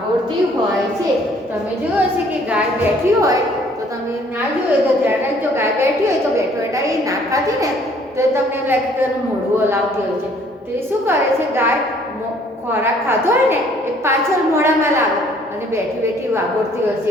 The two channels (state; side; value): normal; both; correlation 0.60